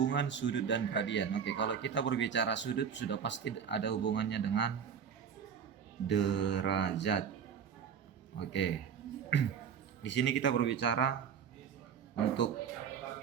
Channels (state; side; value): quieter; left; 7.5 dB